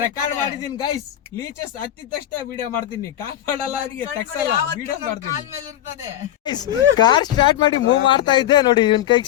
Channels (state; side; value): quieter; right; 12.3 dB